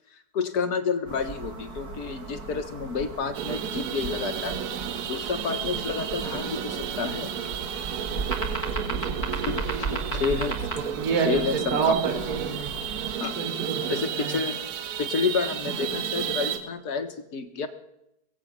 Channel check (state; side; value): late; right; 4.7 ms